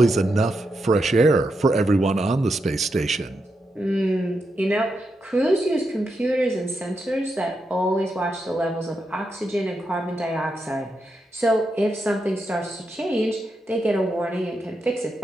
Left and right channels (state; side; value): normal; both; correlation 0.85